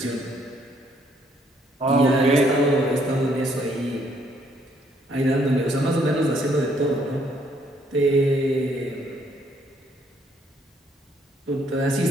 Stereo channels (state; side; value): normal; both; correlation 0.68